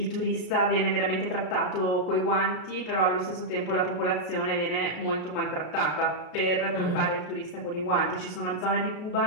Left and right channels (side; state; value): right; late; 33 ms